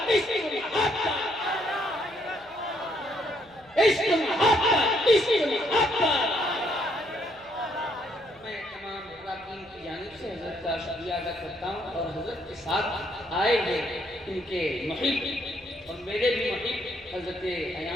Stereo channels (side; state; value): right; noise; hum, 27 dB below the sound